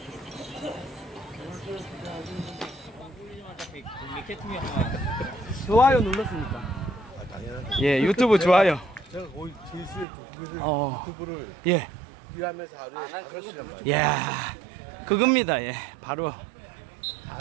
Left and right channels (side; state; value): left; drops out; at 10.1 s